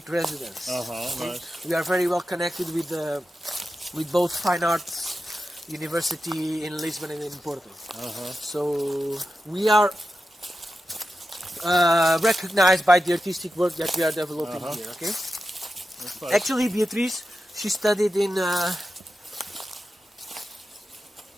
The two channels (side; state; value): both; normal; correlation 0.91